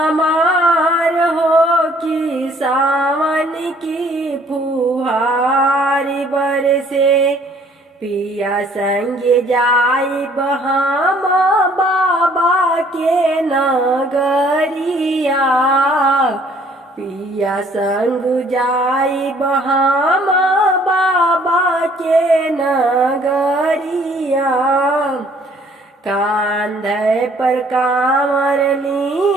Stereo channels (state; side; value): normal; both; correlation 0.59